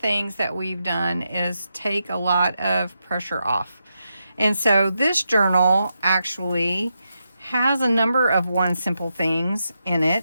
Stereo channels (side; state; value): both; inverted; correlation -0.85